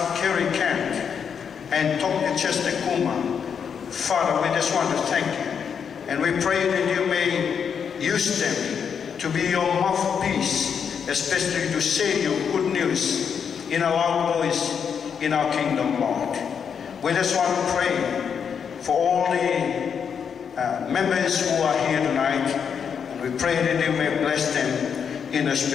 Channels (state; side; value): quieter; right; 7.1 dB